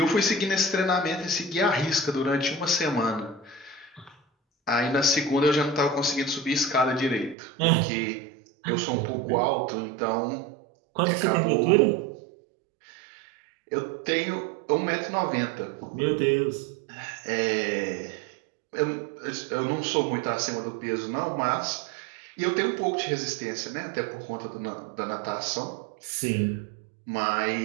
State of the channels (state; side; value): drops out; left; at 7.4 s